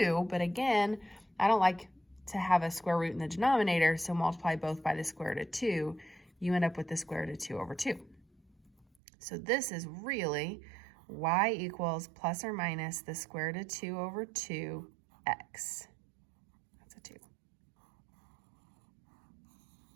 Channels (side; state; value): left; drops out; at 8.8 s